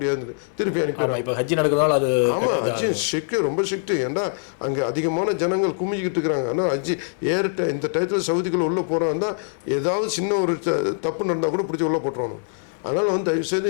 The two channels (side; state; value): right; silent; digital silence